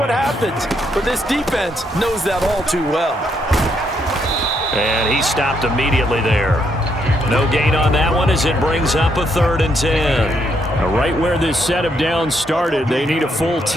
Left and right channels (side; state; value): both; normal; correlation 0.75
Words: happens. But this defense knows that all too well. And he stopped immediately there. No gain on that one as it brings up a 3rd and 10. Now, right where this set of downs started, they need a full